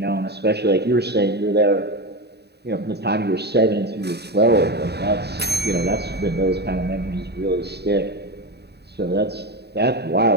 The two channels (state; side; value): late; left; 0.48 ms